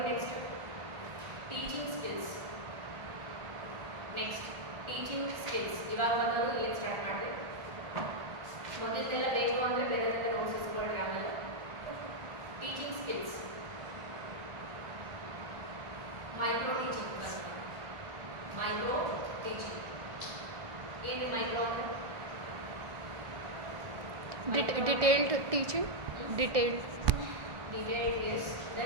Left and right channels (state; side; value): late; left; 1.5 ms